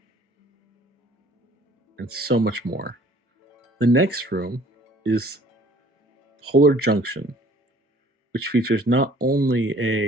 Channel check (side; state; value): both; normal; correlation 0.54